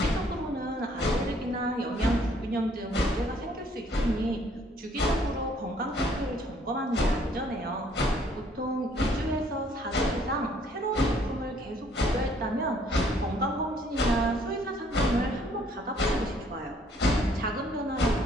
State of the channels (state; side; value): normal; both; correlation 0.63